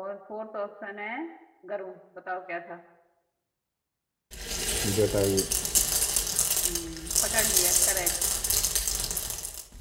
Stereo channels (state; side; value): identical; both; correlation 1.00